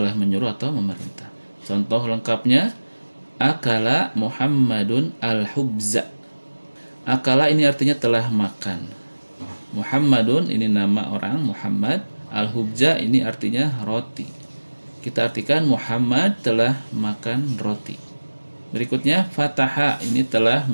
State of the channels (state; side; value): inverted; both; correlation -1.00